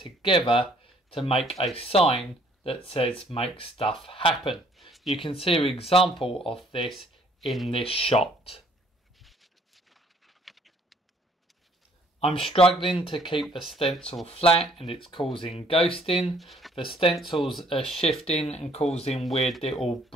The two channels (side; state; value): both; normal; correlation 0.61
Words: to make a sign that says make stuff happen. You can see an example of this in this shot. I'm struggling to keep the stencil flat and it's causing ghosting. The stencils are shifting and causing weird little